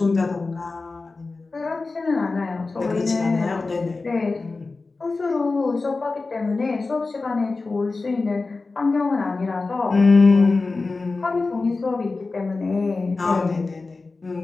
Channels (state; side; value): quieter; right; 3.7 dB